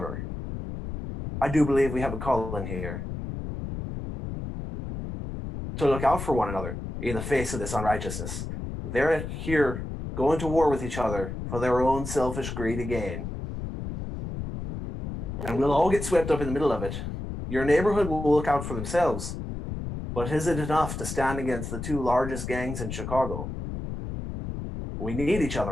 I do believe we have a calling here to look out for one another in the face of this unrighteousness. They're here going to war with each other for their own selfish, greedy gain. And we'll all get swept up in the middle of it. Your neighborhood will look out for themselves. But is it enough to stand against the two largest gangs in Chicago? We need each other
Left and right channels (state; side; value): noise; left; rumble, 6 dB below the sound